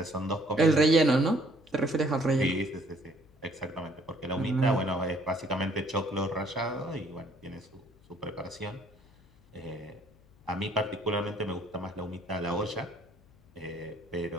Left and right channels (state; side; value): noise; left; hum, 28 dB below the sound